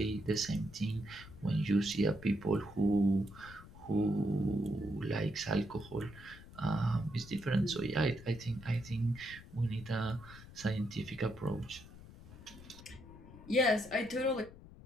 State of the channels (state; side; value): noise; left; rumble, 18 dB below the sound